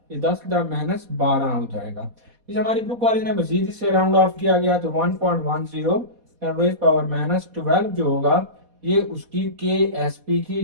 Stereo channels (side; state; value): left; late; 4.1 ms